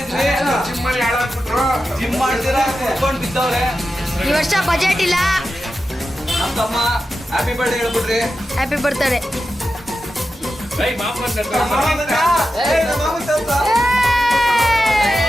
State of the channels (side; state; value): both; normal; correlation 0.91